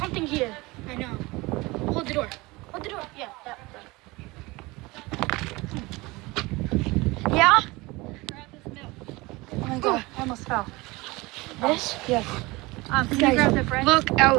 here. I know. Hold the door. Hold the door. Yeah. Yeah? Grab this milk. Oh my god, I almost fell. This? Yes. Can you Guys, grab the bread? look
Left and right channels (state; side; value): quieter; left; 22.7 dB